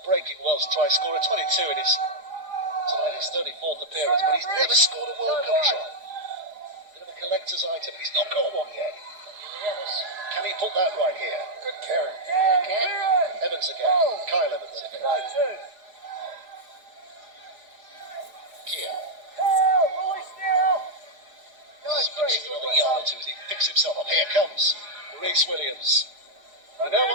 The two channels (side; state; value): left; late; 4.8 ms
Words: Welsh try scorer, 22 in tonight his 34th appearance, but he's never scored a World Cup try. Bit of a collector's item. He's not got one yet. Can he put that right here? Good carry. Again. Evans again. Kyle Evans again. Keir. Nice pitching another yard or two as he picks himself up. Here comes Rhys Williams. I know